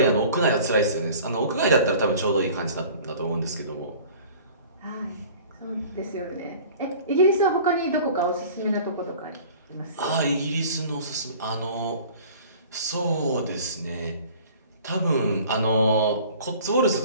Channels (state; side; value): inverted; both; correlation -0.46